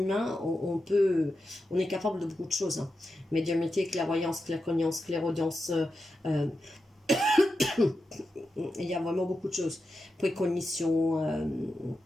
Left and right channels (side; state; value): both; normal; correlation 0.89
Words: on est capable de beaucoup de choses. Hein. Médiumnité, clairvoyance, claircognance, clairaudience, il y a vraiment beaucoup de choses. Précognition,